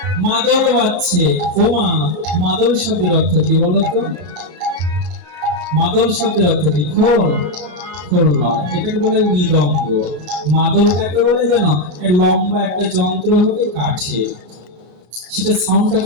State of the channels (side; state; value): left; late; 33 ms